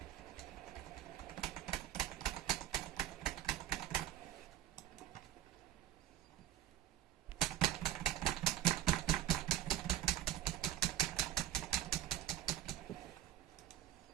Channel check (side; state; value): left; quieter; 12.9 dB